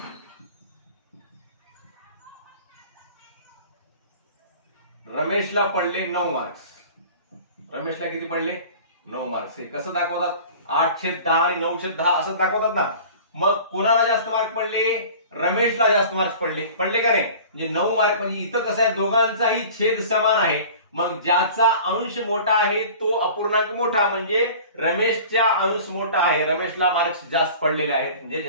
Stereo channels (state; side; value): inverted; both; correlation -0.42